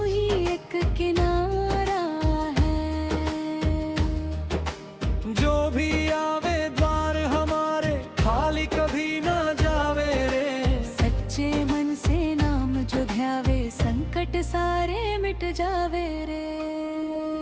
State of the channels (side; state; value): both; identical; correlation 1.00